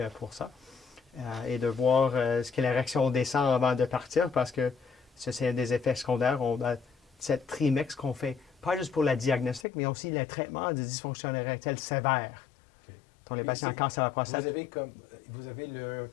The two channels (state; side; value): drops out; right; at 9.7 s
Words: pour ça. Et de voir ce que la réaction descend avant de partir, parce que ça, c'est un des effets secondaires. On a cette trimix qu'on fait, pas juste pour la diagnostic, mais aussi le traitement de dysfonction érectile sévère. OK. Dans les patients cancer à la prostate. Vous avez le